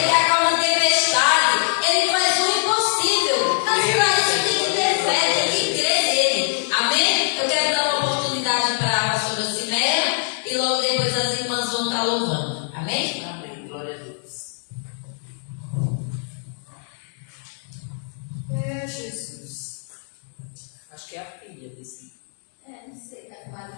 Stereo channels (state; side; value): silent; right; 64 dB below the other